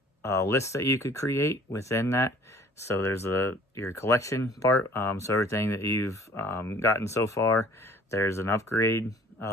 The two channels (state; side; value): normal; both; correlation 0.52